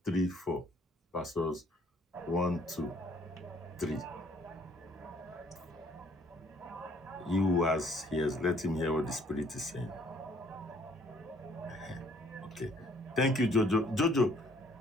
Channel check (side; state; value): both; normal; correlation 0.62